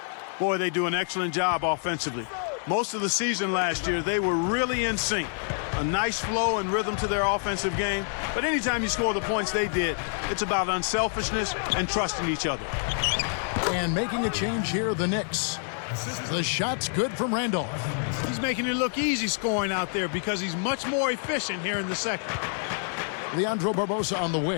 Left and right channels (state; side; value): silent; right; 58 dB below the other